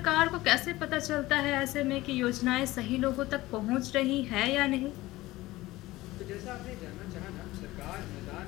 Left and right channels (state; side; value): quieter; right; 18.3 dB